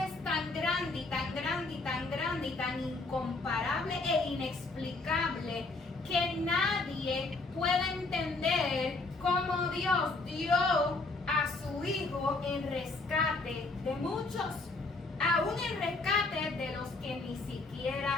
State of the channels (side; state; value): right; quieter; 3.5 dB